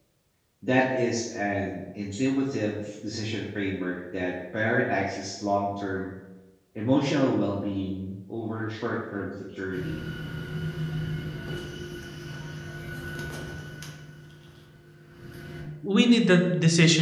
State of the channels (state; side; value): identical; both; correlation 1.00